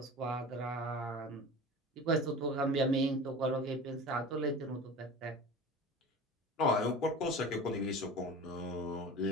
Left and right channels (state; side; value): normal; both; correlation 0.35